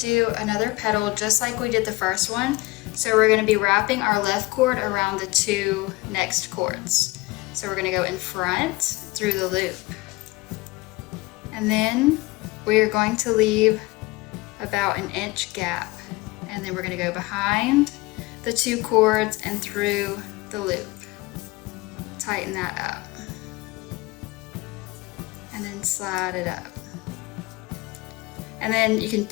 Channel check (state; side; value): quieter; right; 22.0 dB